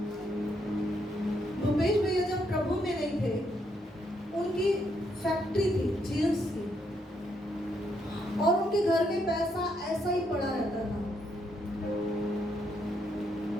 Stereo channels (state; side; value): normal; both; correlation 0.76